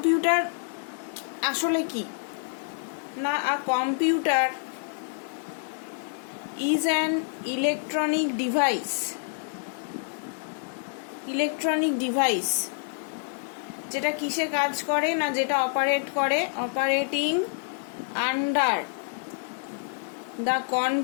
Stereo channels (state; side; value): silent; right; digital silence